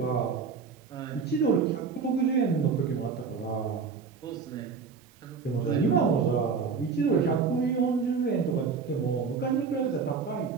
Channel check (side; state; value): left; quieter; 5.4 dB